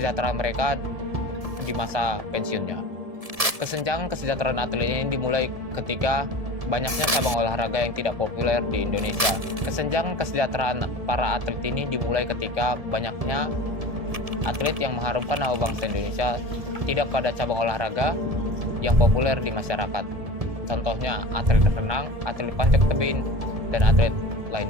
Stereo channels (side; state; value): left; late; 1.7 ms